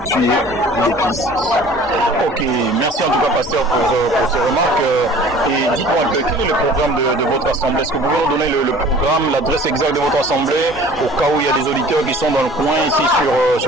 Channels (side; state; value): both; normal; correlation 0.47